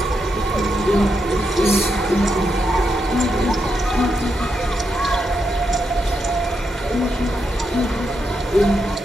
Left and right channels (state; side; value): normal; both; correlation 0.83